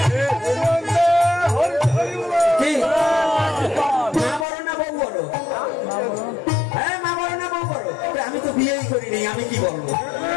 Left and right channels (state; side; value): drops out; right; at 4.5 s